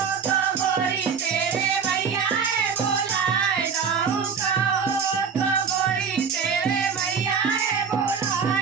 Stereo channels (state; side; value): quieter; left; 6.2 dB